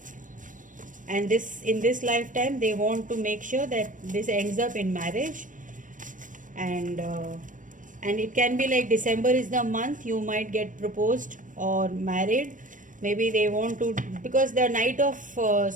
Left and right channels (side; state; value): left; late; 0.38 ms